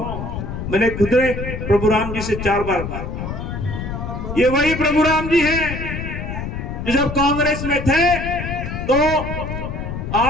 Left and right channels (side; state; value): left; noise; rumble, 6 dB below the sound